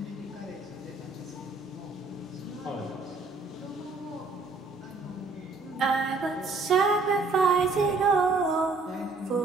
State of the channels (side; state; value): left; quieter; 3.8 dB